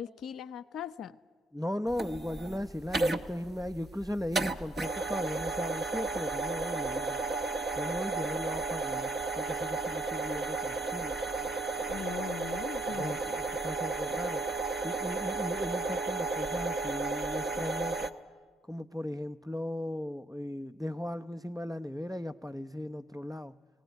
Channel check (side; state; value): both; normal; correlation 0.70